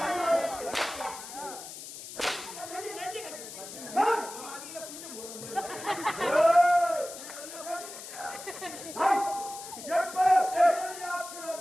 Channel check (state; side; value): noise; left; hiss, 12 dB below the sound